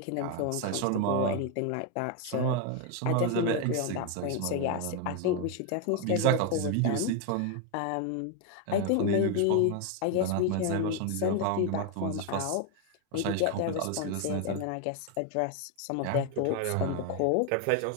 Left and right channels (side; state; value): both; different; correlation 0.01